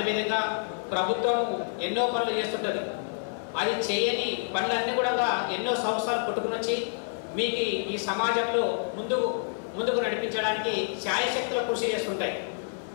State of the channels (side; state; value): right; silent; 55 dB below the other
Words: ప్రభుత్వం ఎన్నో పనులు చేస్తుంటుంది, అది చేయని పనులన్నీ కూడా ఎన్నో సంవత్సరాలు పుట్టుకుని వచ్చి మీకు ఈ సమాజంలో ముందుకు నడిపించడానికి శాయశక్తుల కృషి చేస్తుంటాయి।